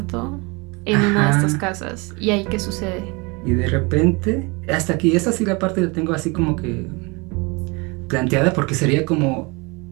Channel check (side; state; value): left; quieter; 27.8 dB